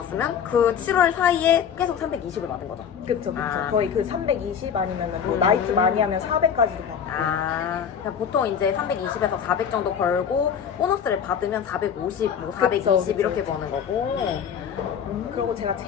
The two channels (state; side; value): quieter; right; 7.8 dB